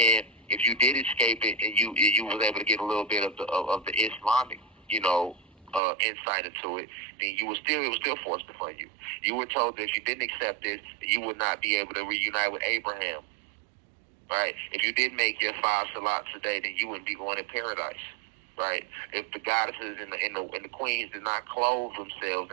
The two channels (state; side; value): drops out; left; at 5.8 s